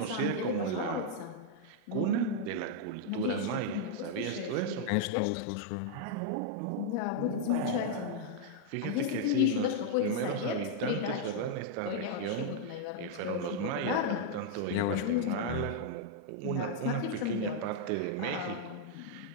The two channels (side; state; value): both; different; correlation -0.01